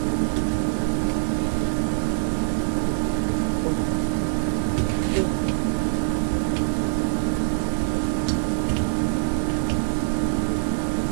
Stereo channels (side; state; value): left; silent; digital silence